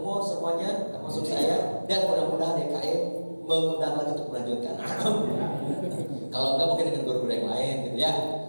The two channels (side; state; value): both; inverted; correlation -1.00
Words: semuanya, termasuk saya, dan mudah-mudahan DKM mengundang lagi untuk melanjutkan. Kalau enggak mungkin dengan guru-guru yang lain gitu ya.